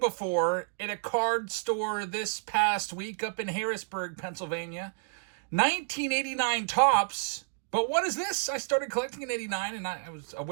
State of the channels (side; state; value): left; silent; digital silence